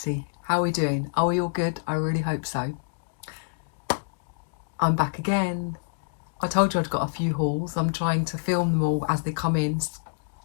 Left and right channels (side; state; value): right; silent; digital silence